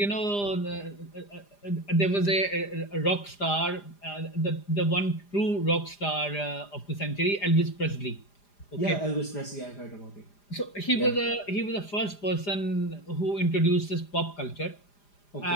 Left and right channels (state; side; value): late; right; 5.0 ms